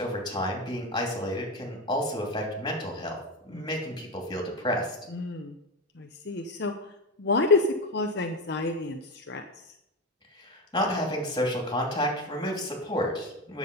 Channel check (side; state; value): both; normal; correlation 0.18